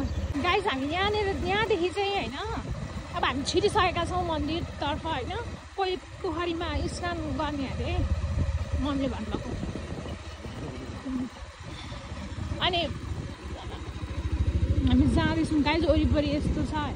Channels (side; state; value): both; identical; correlation 1.00